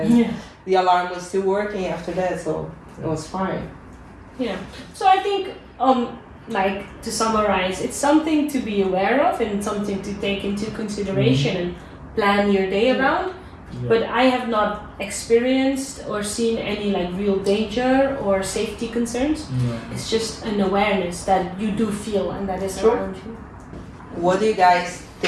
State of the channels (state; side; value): identical; both; correlation 1.00